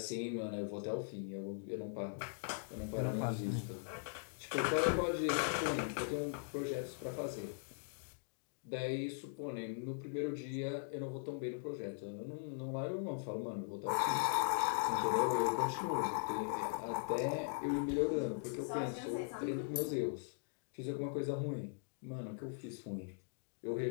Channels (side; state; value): right; silent; digital silence